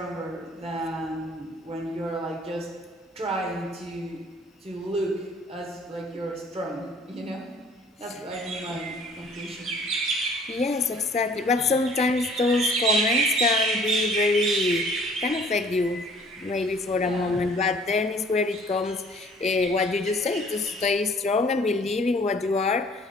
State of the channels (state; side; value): normal; both; correlation 0.55